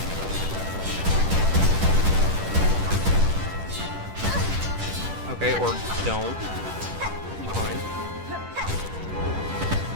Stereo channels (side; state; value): left; late; 10 ms